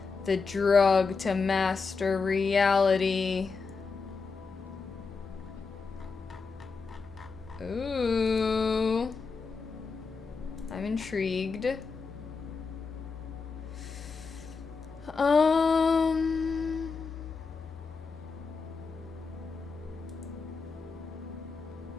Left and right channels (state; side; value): quieter; right; 4.7 dB